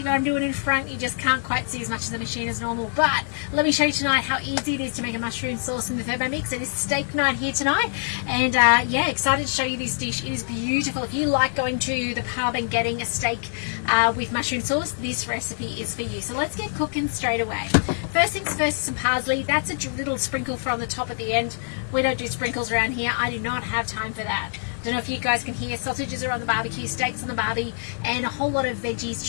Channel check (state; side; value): silent; right; digital silence